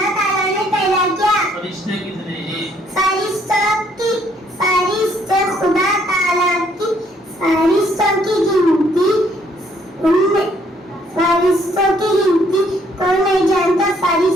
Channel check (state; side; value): normal; both; correlation 0.67